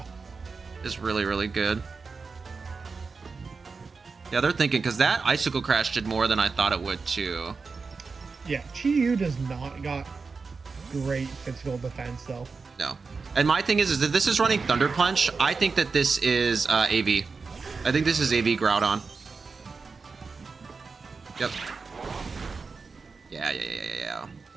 Is really, really good. Yeah, they're thinking, because that Icicle Crash did more than I thought it would, too. Yeah, Chi-Yu does not got great physical defense, though. No. And my thing is that this is running Thunder Punch. I think that this is AV. I think this is AV Groudon. Yep. Yeah.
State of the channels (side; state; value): left; quieter; 4.6 dB